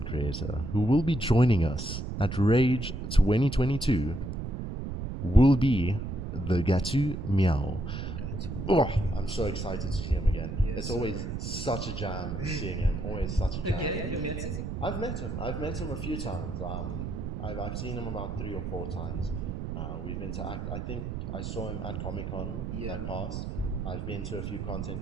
creator who will be joining us at Rage 2022 will be the Gatu Meow. Oh, I'm so excited to see him again. It's always such a jam seeing him. Always such a jam. You met him? I've met him a few times. I've seen him about 3 or 4 times. We've interacted. I think I saw him at Comic-Con that passed. I've been to a few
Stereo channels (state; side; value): noise; right; rumble, 5 dB below the sound